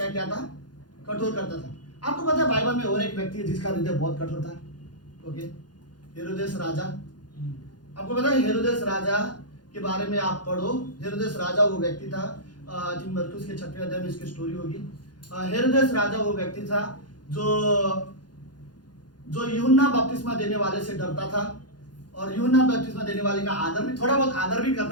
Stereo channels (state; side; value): late; right; 0.70 ms